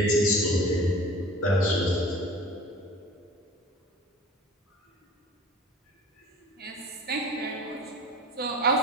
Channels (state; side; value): normal; both; correlation 0.40